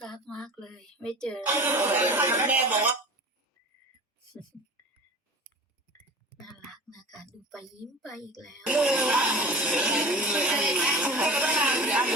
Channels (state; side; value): normal; both; correlation 0.37